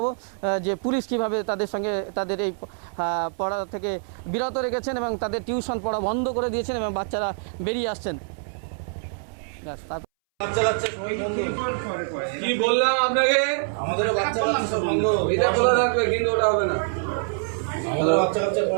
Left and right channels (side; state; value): left; silent; 62 dB below the other